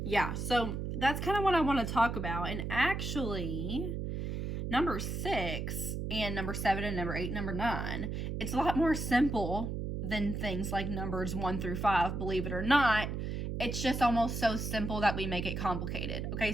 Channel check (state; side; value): noise; right; hum, 3 dB below the sound